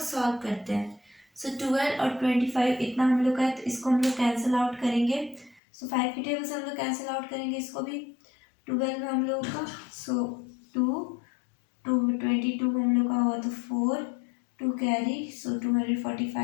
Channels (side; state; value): right; drops out; at 5.6 s